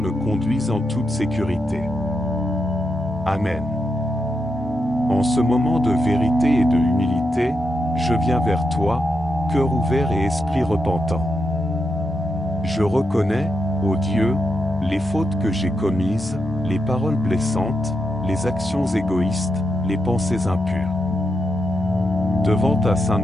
conduise en toute sécurité. Amen. En ce moment de vérité et de humilité, je viens vers toi, cœur ouvert et esprit repentant. Je reconnais, ô Dieu, les fautes que j'ai commises, les paroles blessantes, les actions égoïstes, les pensées impures. Devant ta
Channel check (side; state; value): both; normal; correlation 0.84